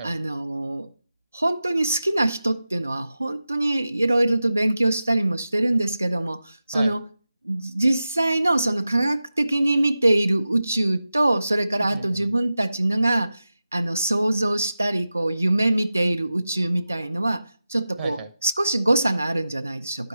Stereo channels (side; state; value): both; inverted; correlation -0.93